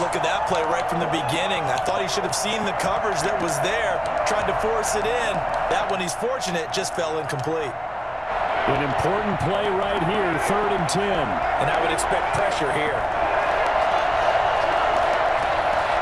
look of that play right from the beginning. I thought he should have seen the coverage that was there, tried to force it in. That one, he's fortunate, just fell incomplete. An important play right here, 3rd and 10. And I would expect pressure here.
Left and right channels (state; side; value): identical; both; correlation 1.00